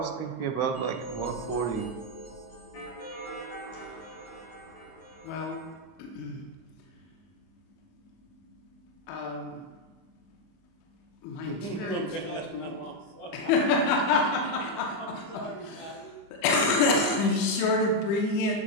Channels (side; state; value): right; late; 25 ms